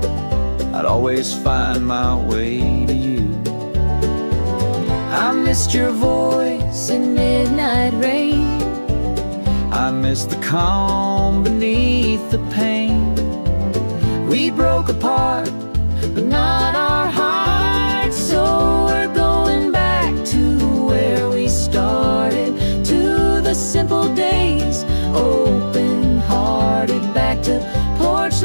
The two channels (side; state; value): both; inverted; correlation -1.00